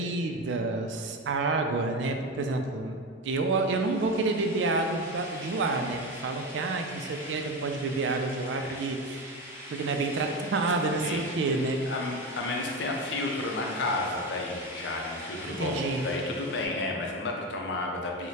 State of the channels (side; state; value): both; normal; correlation 0.19